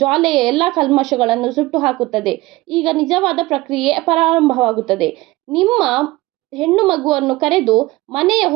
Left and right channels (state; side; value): quieter; left; 19.8 dB